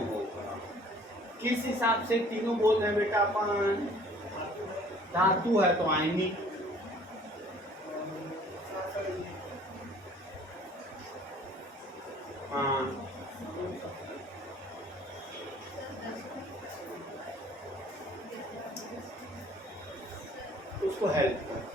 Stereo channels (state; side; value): normal; both; correlation 0.54